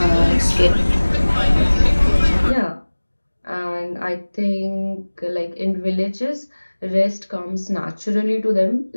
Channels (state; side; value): inverted; both; correlation -1.00